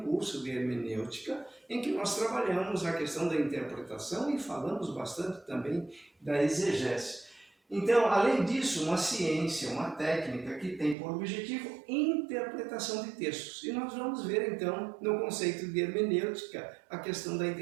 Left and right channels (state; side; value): drops out; left; at 11.0 s